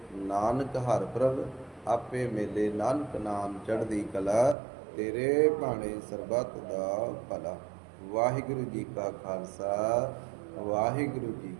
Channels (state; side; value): drops out; left; at 4.5 s